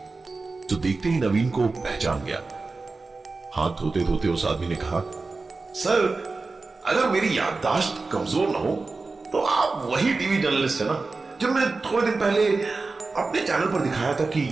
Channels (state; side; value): quieter; left; 3.8 dB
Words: जो देखते ही नवीन को पहचान गया। हाथ धोते धोते उस आदमी ने कहा, सर, अगर मेरी याददाश्त कमजोर ना हो तो आप वही टीवी जर्नलिस्ट है ना जो मैंने थोड़े दिन पहले अपने चैनल पर दिखाया था कि